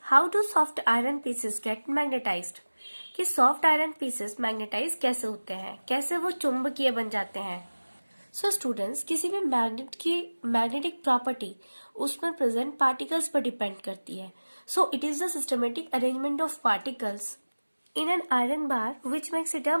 how do soft iron pieces get magnetized? कि सॉफ्ट आयरन पीसेस मैग्नेटाइज कैसे होते हैं, कैसे वो चुंबकीय बन जाते हैं। सो स्टूडेंट्स, किसी भी मैग्नेट की मैग्नेटिक प्रॉपर्टी उसमें प्रेजेंट पार्टिकल्स पर डिपेंड करती है। So it is the systematic arrangement of particles in an iron bar which makes it a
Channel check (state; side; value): inverted; both; correlation -1.00